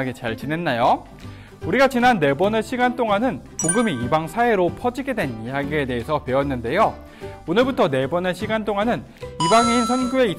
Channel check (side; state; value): both; identical; correlation 1.00